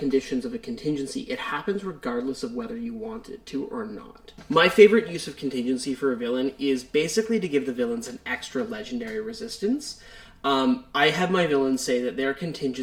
of a contingency, it happens regardless of whether you want it to or not. My favorite use of contingency for a villain is basically to give the villains an extra legendary resistance. I have my villains say that their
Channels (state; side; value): identical; both; correlation 1.00